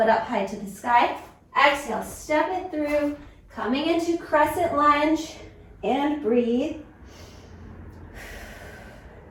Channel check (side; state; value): both; identical; correlation 1.00